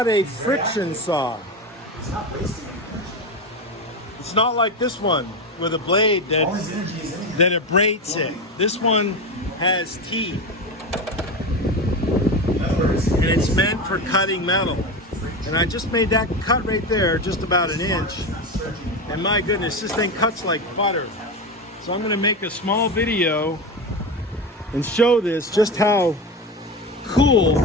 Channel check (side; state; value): both; normal; correlation 0.20